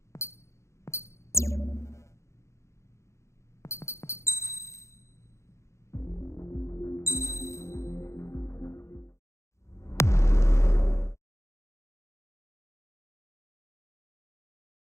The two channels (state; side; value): late; right; 0.14 ms